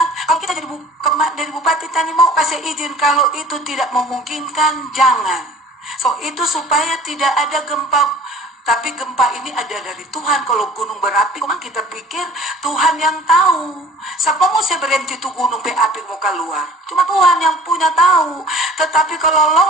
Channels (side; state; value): both; normal; correlation 0.48